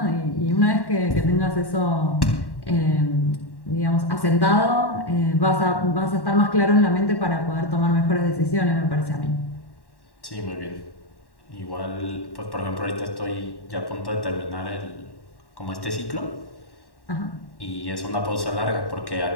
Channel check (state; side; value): late; right; 1.1 ms